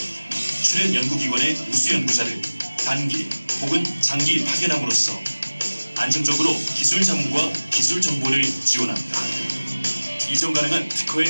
출연 연구기관의 우수 연구자를 단기 혹은 장기 파견함으로써 안정적으로 기술 자문과 기술 정보를 지원합니다. 이전 가능한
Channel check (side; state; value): both; inverted; correlation -1.00